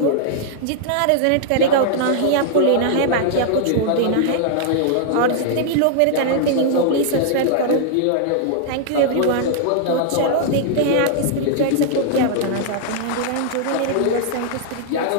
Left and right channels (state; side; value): different; both; correlation -0.01